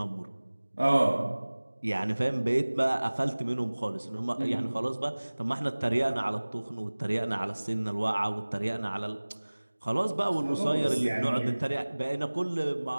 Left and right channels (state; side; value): inverted; both; correlation -1.00